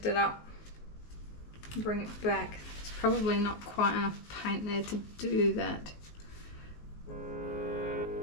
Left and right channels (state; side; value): late; right; 19 ms